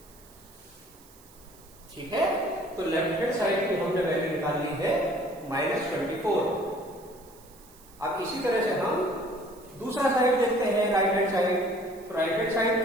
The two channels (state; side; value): noise; right; hiss, 24 dB below the sound